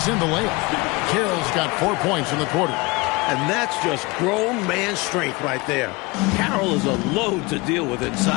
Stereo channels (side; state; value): right; quieter; 24.8 dB